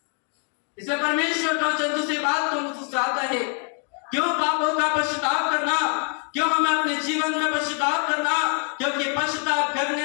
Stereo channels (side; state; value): right; quieter; 38.3 dB